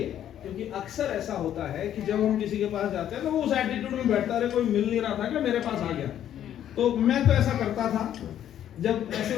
क्योंकि अक्सर ऐसा होता है कि जब हम किसी के पास जाते हैं तो वो उस एटीट्यूड में बैठता है, कोई मिल नहीं रहा था कि मेरे पास आ गया। तो मैं तो ऐसा करता था, जब ऐसे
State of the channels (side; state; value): right; quieter; 10.7 dB